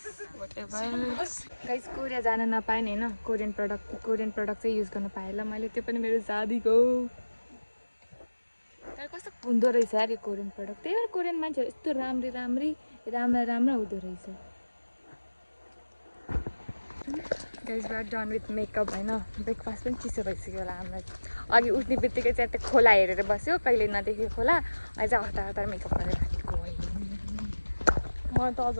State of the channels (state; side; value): inverted; both; correlation -1.00